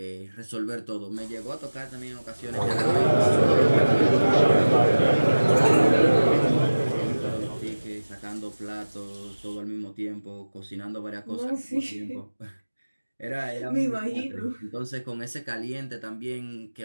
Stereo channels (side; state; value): both; inverted; correlation -1.00